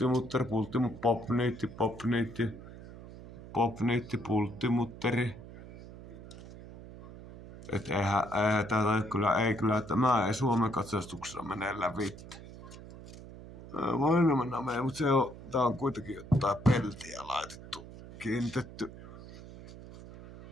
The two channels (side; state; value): right; noise; hum, 15 dB below the sound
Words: mutteri, popniitti, popniitti. Popniitti, pultti, mutteri. Et eihän tätä kyllä tämä ei Suomen katsastuksessa mene läpi. Voin mennä meidän, mutta tää on kuitenkin jotain peltiä laitettu, kiinnitetty.